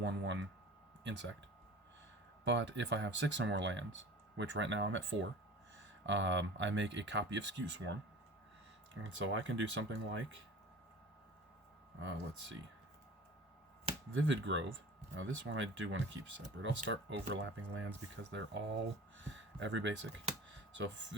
insect. But if I have 6 or more lands, which right now I'm at 4, I make a copy of Scute Swarm. And so I can do something like, let's see, Vivid Grove. Now this one I do want to keep separate. I'll start overlapping lands because they're all every basic. So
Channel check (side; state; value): both; normal; correlation 0.39